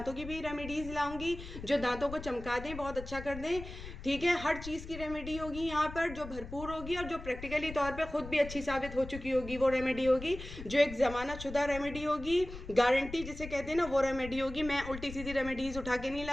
की भी रेमेडीज़ लाऊंगी जो दांतों को चमका दें, बहुत अच्छा कर दें। ठीक है, हर चीज़ की रेमेडी होगी यहाँ पर जो भरपूर होगी और जो प्रैक्टिकली तौर पर खुद भी अच्छी साबित हो चुकी होगी। वो रेमेडी होगी जो एक ज़माना शुदा रेमेडी होगी, गारंटी जिसे कहते हैं ना, वो रेमेडी होगी। मैं उल्टी सीधी रेमेडीज़ उठा के नहीं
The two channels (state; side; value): noise; left; rumble, 12 dB below the sound